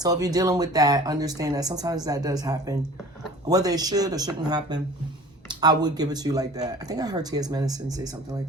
if you're dealing with that, understand that sometimes that does happen. Whether it should or shouldn't happen, I would give it to you like that. I think I heard T.S. Madison say something like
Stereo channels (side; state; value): both; normal; correlation 0.44